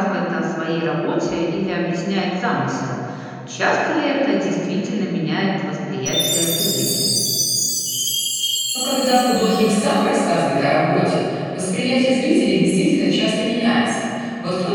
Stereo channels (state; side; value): identical; both; correlation 1.00